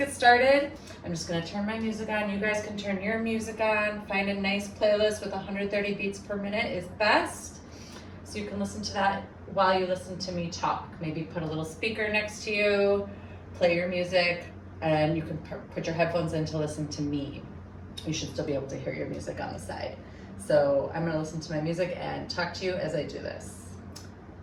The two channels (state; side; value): identical; both; correlation 1.00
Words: started. I'm just gonna turn my music on. You guys can turn your music on. Find a nice playlist with 130 beats per minute is best. So you can listen to that while you listen to me talk. Maybe put a little speaker next to you, play your music, and you can put your headphones in to listen to me. You should still be able to hear your music on the side. So I'm gonna listen to my music and talk to you as I do this.